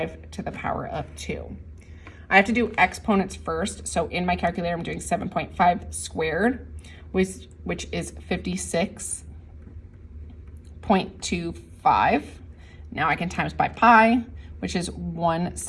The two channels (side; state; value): both; identical; correlation 1.00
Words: to the power of 2. I have to do exponents first. So in my calculator, I'm doing 7.5 squared, which is 56.25. Now I can times by pi, which is